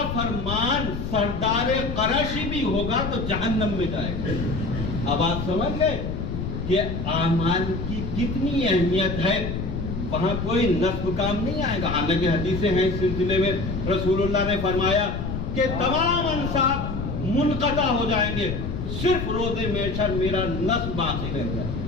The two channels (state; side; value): noise; left; rumble, 4 dB below the sound